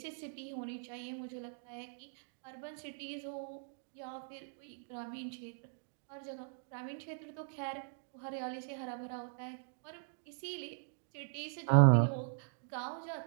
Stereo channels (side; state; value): left; silent; digital silence